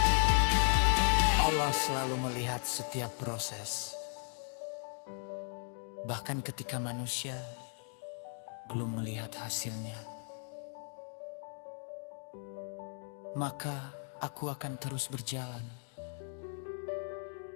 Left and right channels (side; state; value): right; silent; 54 dB below the other